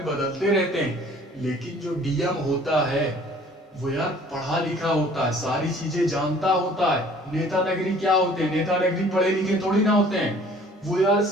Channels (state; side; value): normal; both; correlation 0.53